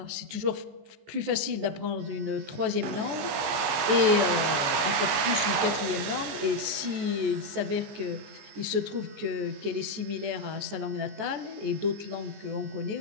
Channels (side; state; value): left; late; 15 ms